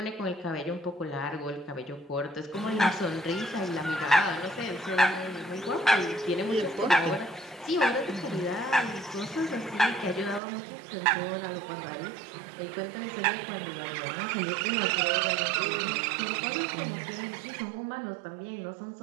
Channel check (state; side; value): drops out; left; at 10.4 s